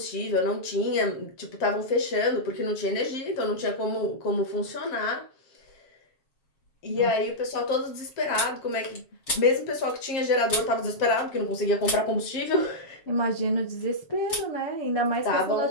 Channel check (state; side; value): late; right; 7.2 ms